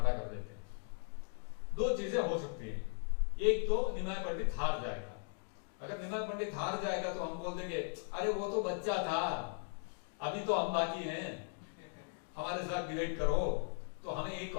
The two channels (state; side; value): silent; right; 52 dB below the other